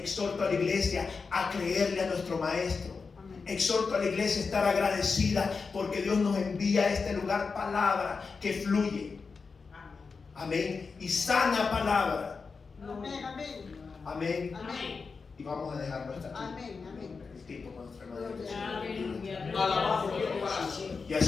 a la iglesia a creerle a nuestro maestro. Exhorto a la iglesia a estar agradecida porque Dios nos envía a este lugar palabra que fluye. Amén. Y sana palabra. Amén. Y vamos a dejarlo hasta aquí. El tiempo con nuestra hermana. Y a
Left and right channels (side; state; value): right; quieter; 4.8 dB